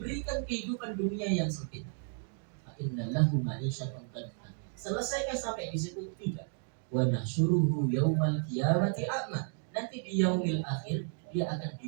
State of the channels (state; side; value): silent; left; 56 dB below the other